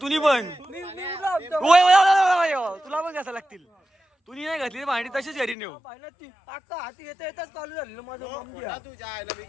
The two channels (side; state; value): right; drops out; at 5.6 s